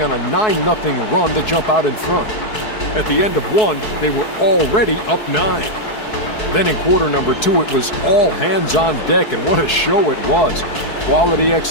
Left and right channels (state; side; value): late; right; 4.7 ms